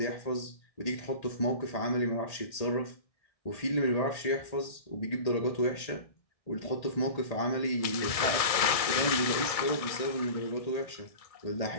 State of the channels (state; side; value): late; right; 1.6 ms